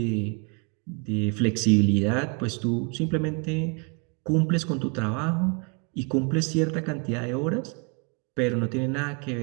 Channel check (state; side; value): quieter; left; 33.6 dB